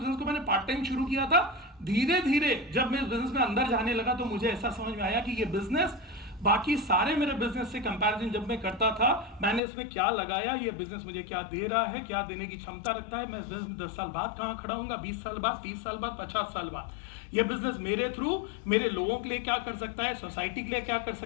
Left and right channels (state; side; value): drops out; right; at 9.6 s